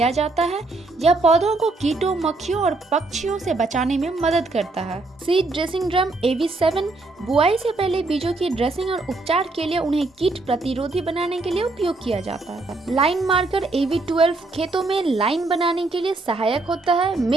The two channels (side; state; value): left; quieter; 3.2 dB